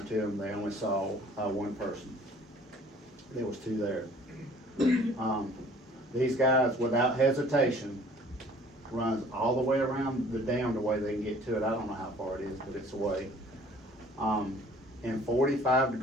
to them, they only saw one person. There was 2 there. These guys, without hesitation, runs all the way around the dam the way they can get to it. I don't know how far it is, but it's away. In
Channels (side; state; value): both; normal; correlation 0.53